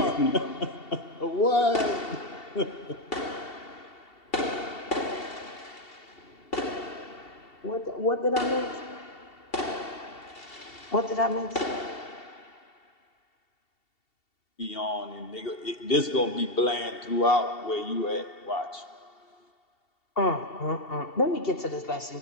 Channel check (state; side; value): late; right; 2.7 ms